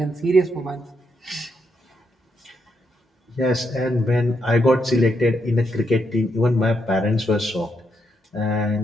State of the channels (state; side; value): normal; both; correlation 0.79